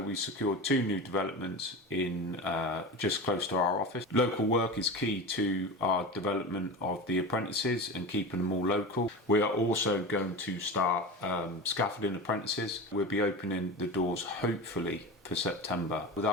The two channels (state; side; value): normal; both; correlation 0.27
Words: we secured two new developments in just close to our office. Local work is key to our development of the apprentices and keeping them all local. We are also going to start Scaffolding Apprentices. We'll be opening the doors hopefully for September.